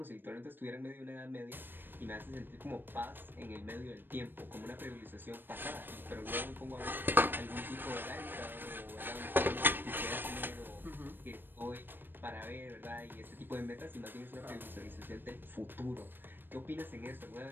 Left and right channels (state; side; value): late; left; 0.095 ms